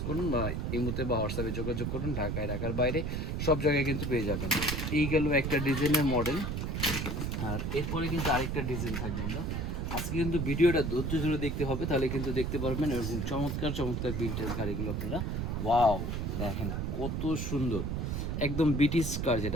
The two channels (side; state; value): right; noise; rumble, 1 dB below the sound